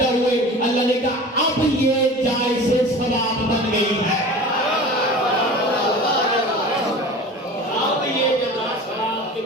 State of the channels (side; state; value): both; normal; correlation 0.37